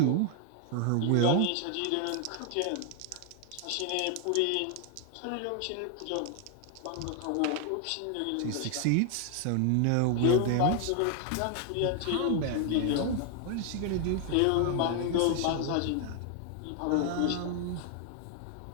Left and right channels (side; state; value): both; different; correlation 0.00